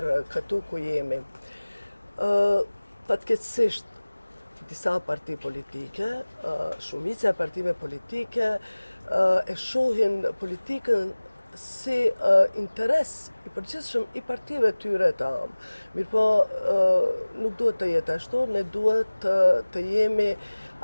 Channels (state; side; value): inverted; both; correlation -1.00